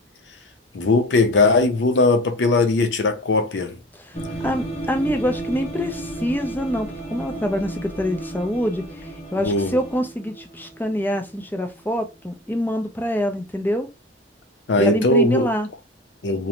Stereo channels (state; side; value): normal; both; correlation 0.37